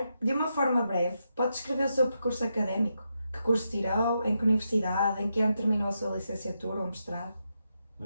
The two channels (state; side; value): inverted; both; correlation -0.84